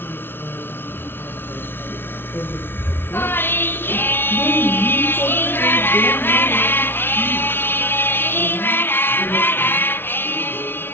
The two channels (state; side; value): late; right; 0.11 ms